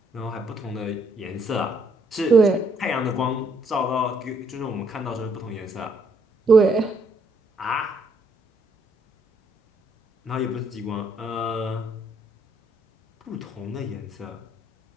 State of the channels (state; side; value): normal; both; correlation 0.70